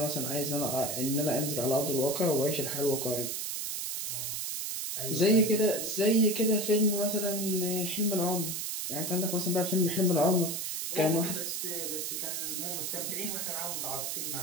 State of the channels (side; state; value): right; noise; hiss, 3 dB below the sound